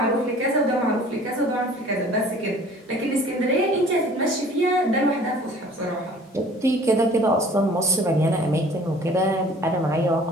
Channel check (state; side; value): normal; both; correlation 0.50